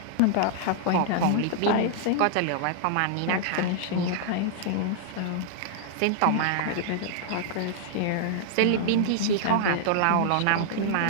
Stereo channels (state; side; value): different; both; correlation -0.01